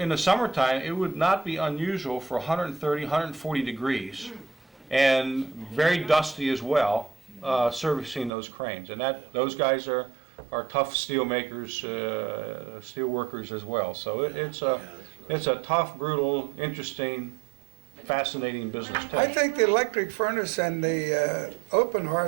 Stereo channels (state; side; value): drops out; left; at 8.3 s